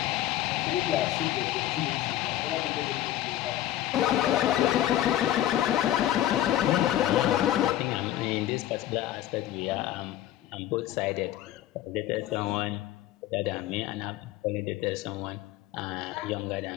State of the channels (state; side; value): quieter; right; 13.2 dB